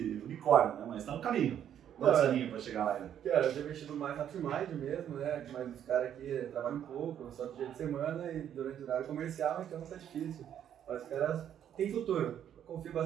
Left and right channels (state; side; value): quieter; left; 9.8 dB